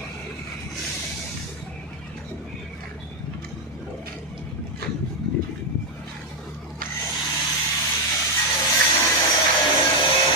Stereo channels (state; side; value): normal; both; correlation 0.04